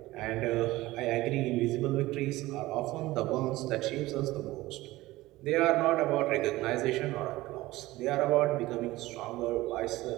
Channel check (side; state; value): left; quieter; 18.3 dB